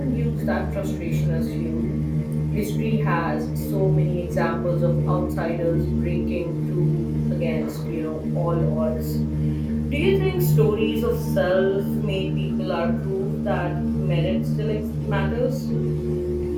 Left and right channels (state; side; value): identical; both; correlation 1.00